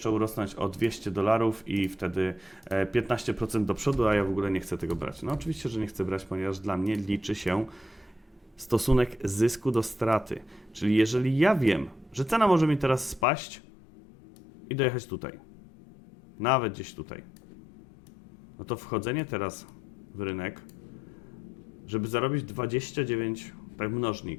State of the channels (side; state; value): right; drops out; at 13.2 s